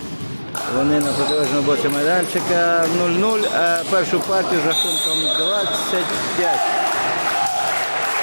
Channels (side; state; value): both; inverted; correlation -1.00